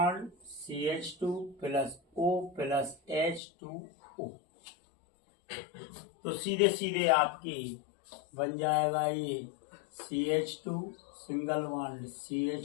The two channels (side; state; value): right; drops out; at 3.4 s